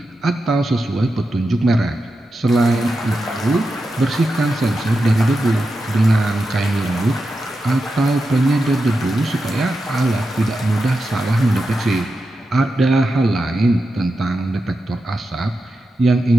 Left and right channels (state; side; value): normal; both; correlation 0.89